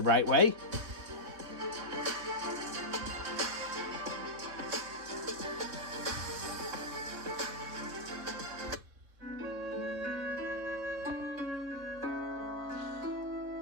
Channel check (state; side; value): late; left; 3.5 ms